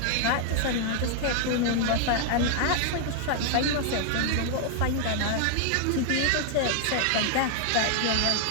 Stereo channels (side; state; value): both; different; correlation 0.00